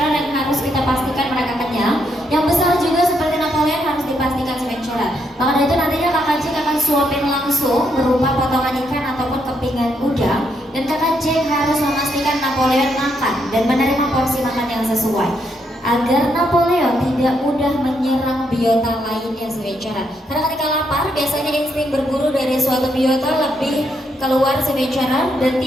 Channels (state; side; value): normal; both; correlation 0.76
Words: yang harus kita pastikan mereka kenyang, yang besar juga seperti Napoleon harus dipastikan Sea Ventura. Maka dari itu nantinya Kakak Jack akan suapin langsung berupa potongan ikan ataupun kepingan udang, dan Kakak Jack harus memastikan Napoleon makan dan menerima porsi makan yang sesuai agar Napoleon tidak mudah menyerang biota lainnya Sea Ventura. Karena ketika lapar biasanya insting berburu dari suatu biota lebih keluar Sea Ventura dan